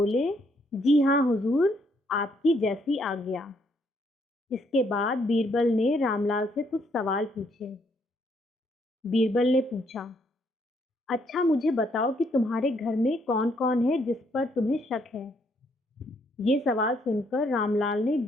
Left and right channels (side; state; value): both; normal; correlation 0.71